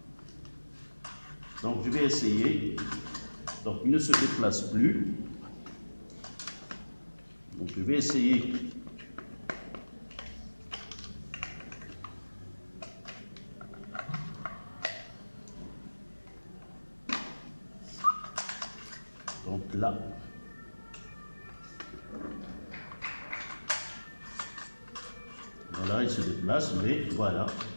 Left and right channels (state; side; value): inverted; both; correlation -1.00